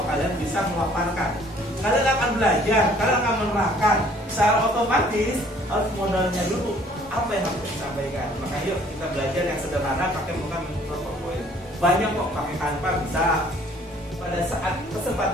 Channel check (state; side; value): normal; both; correlation 0.58